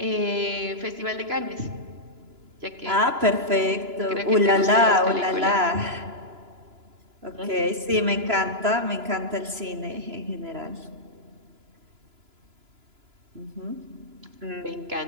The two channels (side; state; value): left; late; 2.9 ms